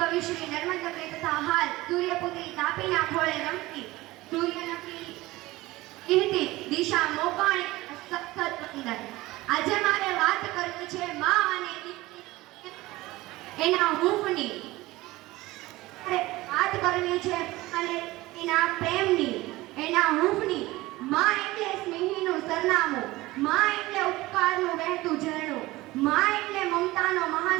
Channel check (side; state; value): left; quieter; 19.0 dB